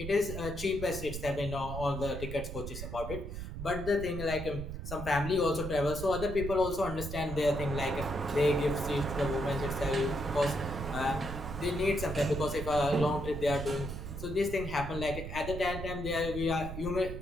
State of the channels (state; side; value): noise; right; rumble, 7 dB below the sound